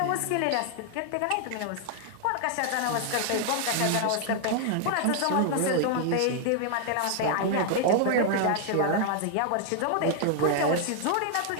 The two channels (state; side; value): different; both; correlation 0.00